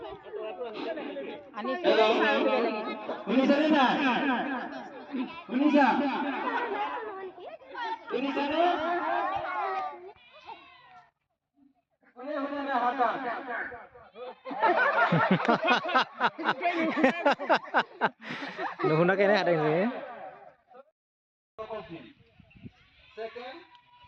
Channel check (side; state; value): both; identical; correlation 1.00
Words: শুনিছানে নাই শুনিছানে নুশুনাকে এনে হাতে